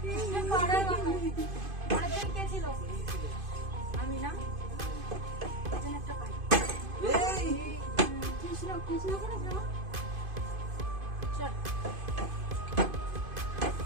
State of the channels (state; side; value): late; left; 2.5 ms